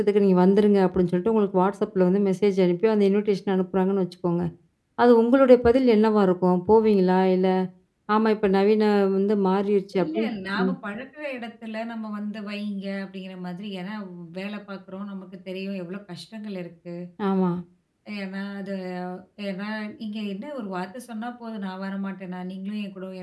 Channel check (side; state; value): both; identical; correlation 1.00